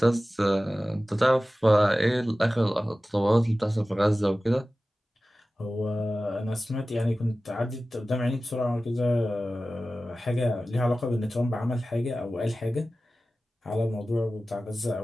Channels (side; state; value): both; normal; correlation 0.96